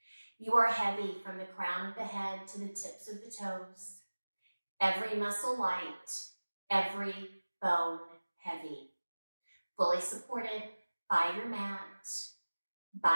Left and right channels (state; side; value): inverted; both; correlation -1.00